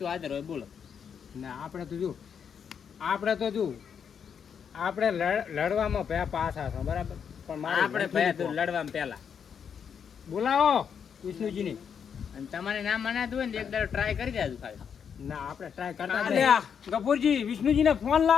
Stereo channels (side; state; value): right; quieter; 7.3 dB